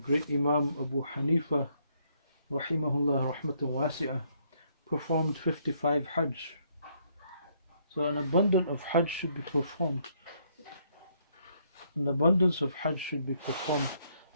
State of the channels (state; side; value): inverted; both; correlation -0.70